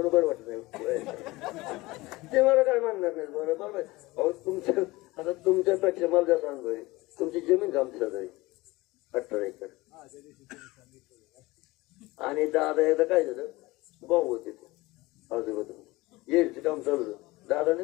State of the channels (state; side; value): quieter; right; 20.8 dB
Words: वाटत नाही ते मला काय म्हणणार नाही बरोबर अहो तुमच्या आता तुमच्यापेक्षा मला जास्त अनुभव आहे तुमची जमीन आमच्याच आहे 18 एकर आणि दादा एकदा काय झालं भाऊ होते ते आजोबा येडचं काम चालू होतं दादाने